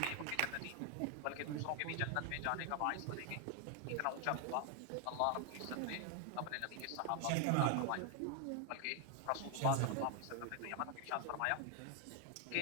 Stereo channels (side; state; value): both; different; correlation 0.00